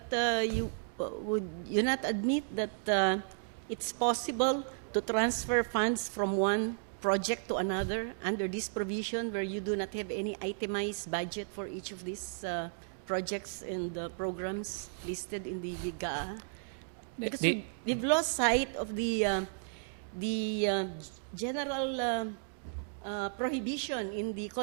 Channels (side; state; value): left; silent; digital silence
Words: would you not admit that it's possible to transfer funds from one project to another under this provision where you do not have any itemized budget for each of these projects and programs listed in the GAA? Because we've lost sight of the general prohibition in the